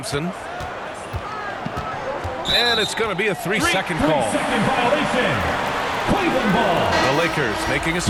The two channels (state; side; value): identical; both; correlation 1.00